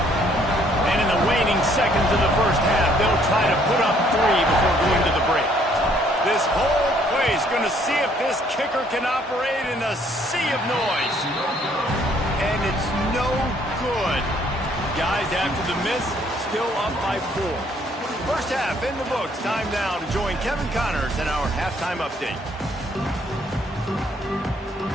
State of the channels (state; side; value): normal; both; correlation 0.64